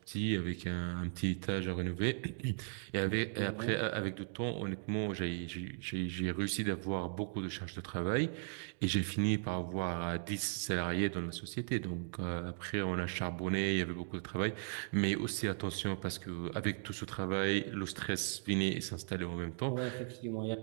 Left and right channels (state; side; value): silent; left; digital silence